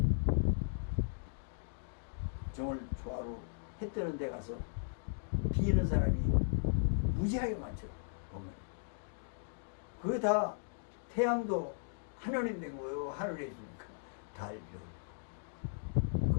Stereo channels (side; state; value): right; silent; digital silence